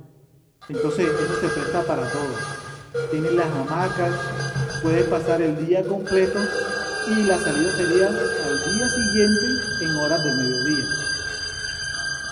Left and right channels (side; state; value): both; identical; correlation 1.00